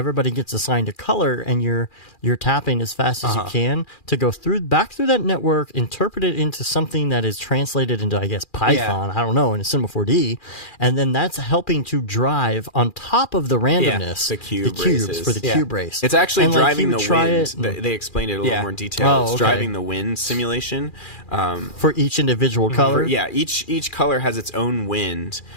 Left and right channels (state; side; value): late; right; 2.4 ms